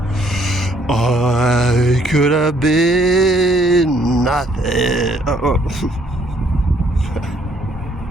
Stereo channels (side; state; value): both; normal; correlation 0.65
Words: I could have been nothing.